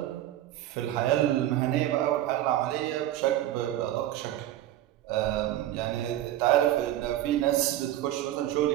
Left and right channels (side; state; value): left; quieter; 13.4 dB